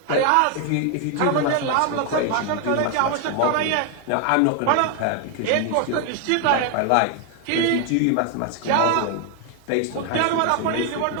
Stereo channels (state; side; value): different; both; correlation 0.01